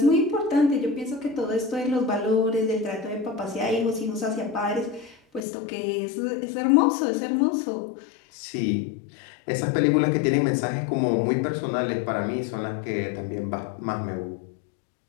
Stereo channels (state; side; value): drops out; right; at 5.5 s